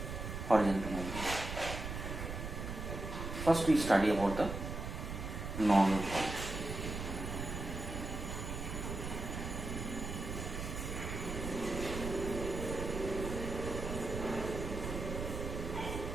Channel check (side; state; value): right; noise; rumble, 5 dB below the sound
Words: horizontal movement. First we study about the normal fault.